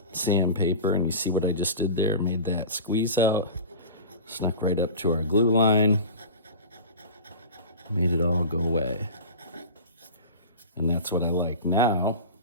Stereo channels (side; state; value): both; inverted; correlation -0.33